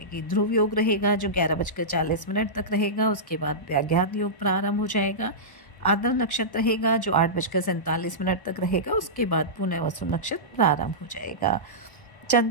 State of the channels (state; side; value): late; right; 1.0 ms